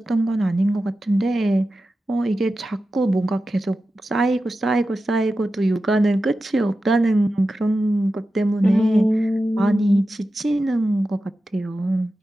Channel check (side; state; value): both; normal; correlation 0.92